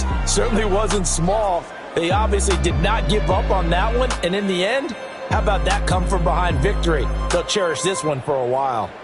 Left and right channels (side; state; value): both; identical; correlation 1.00